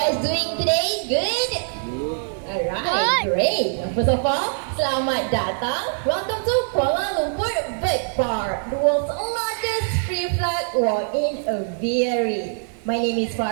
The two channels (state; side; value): silent; left; 63 dB below the other